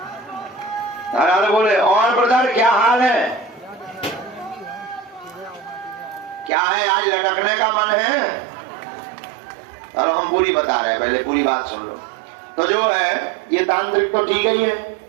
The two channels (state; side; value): drops out; left; at 6.5 s